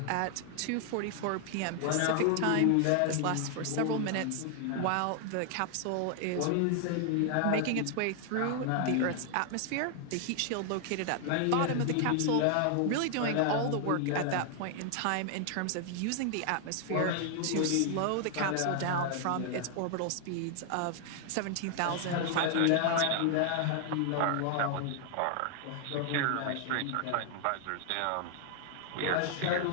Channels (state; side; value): different; both; correlation 0.00